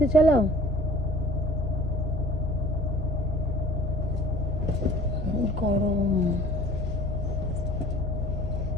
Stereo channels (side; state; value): both; normal; correlation 0.50